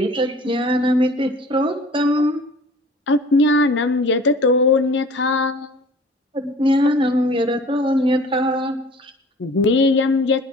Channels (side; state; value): both; normal; correlation 0.47